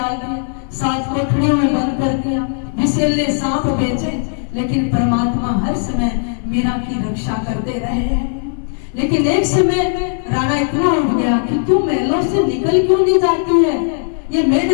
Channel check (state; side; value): silent; right; 63 dB below the other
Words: दिया, 7 कोठरियों में बंद कर दिया, विषैले सांप बेचे, लेकिन परमात्मा हर समय मीरा की रक्षा करते रहे हैं। लेकिन एक समय राणा इतना उठ गया कि तू महलों से निकल क्यों नहीं जाती है? ये